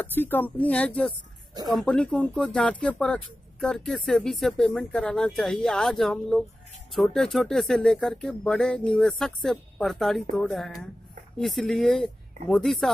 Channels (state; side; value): normal; both; correlation 0.94